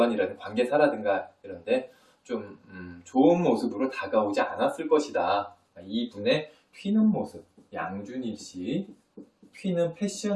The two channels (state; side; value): identical; both; correlation 1.00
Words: 관계사라든가 이런데 좀 좋은 모습으로 다가오지 않았을 것이다. 이분의 튀는 모습, 양준일 씨 튀는